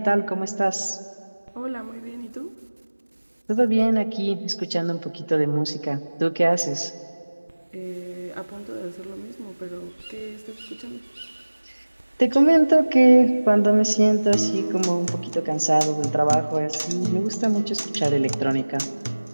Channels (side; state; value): both; inverted; correlation -1.00